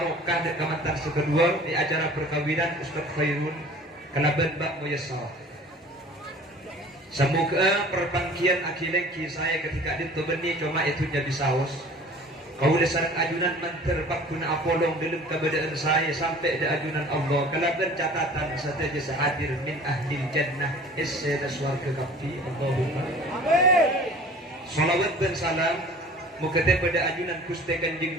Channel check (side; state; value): both; normal; correlation 0.46